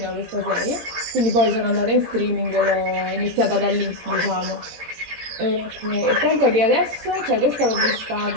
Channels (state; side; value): late; left; 17 ms